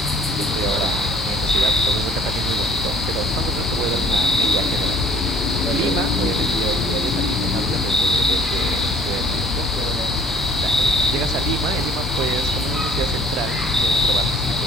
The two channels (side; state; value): both; normal; correlation 0.55